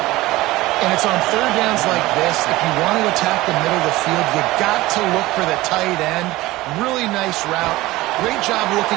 And it's on third downs like this. If you want to attack the middle of the field, you got to look for the tight end. Really nice route. Great job looking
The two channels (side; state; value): left; quieter; 18.6 dB